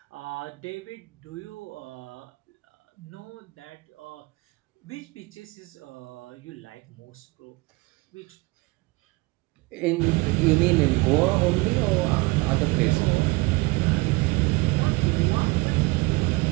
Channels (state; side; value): quieter; left; 24.3 dB